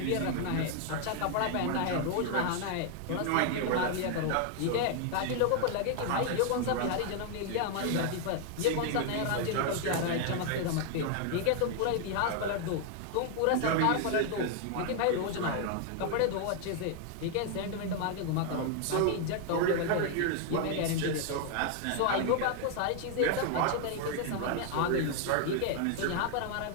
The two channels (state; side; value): different; both; correlation 0.00